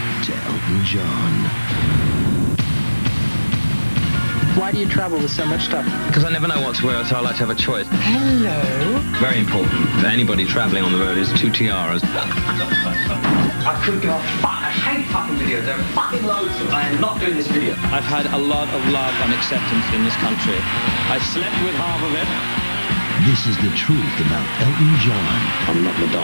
to Elton John. Why do you travel with so much stuff? Because I never know what to wear, so I like to have a choice. Hello. Very important for anybody traveling on the road is 2 tiaras. I couldn't give a fuck. I hate fucking videos. There are fucking loads of them. I am not doing this video. I've had a lot of love and acceptance in this country. I slept with half of it. This is the truth about Elton John. I'm not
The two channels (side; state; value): both; inverted; correlation -1.00